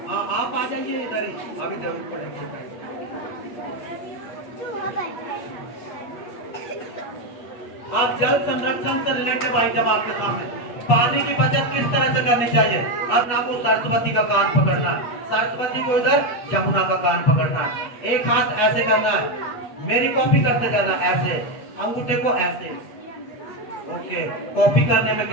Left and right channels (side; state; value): right; late; 8.3 ms